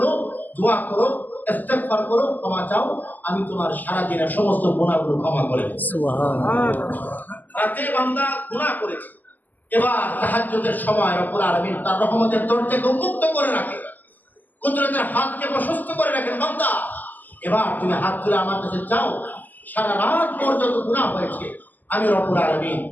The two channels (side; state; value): right; late; 0.084 ms